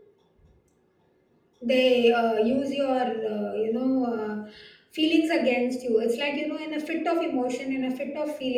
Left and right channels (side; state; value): both; identical; correlation 1.00